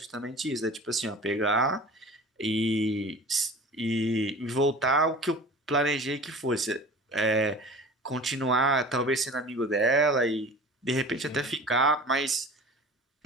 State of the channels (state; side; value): normal; both; correlation 0.40